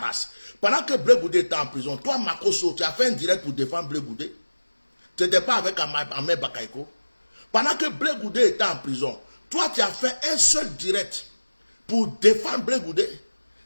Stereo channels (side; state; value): both; inverted; correlation -1.00